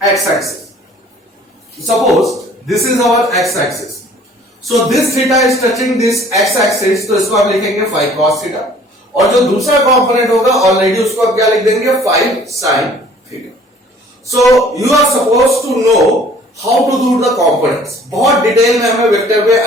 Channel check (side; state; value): both; normal; correlation 0.54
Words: x axis. Suppose this is our x axis, so this theta is touching this x axis, तो इसको आप लिखेंगे 5 cos थीटा और जो दूसरा कंपोनेंट होगा ऑलरेडी उसको आप क्या लिख देंगे 5 sin theta. So you are suppose to know how to do the components. बहुत डिटेल में हमें वेक्टर में